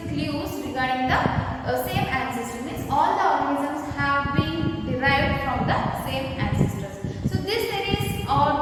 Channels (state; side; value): identical; both; correlation 1.00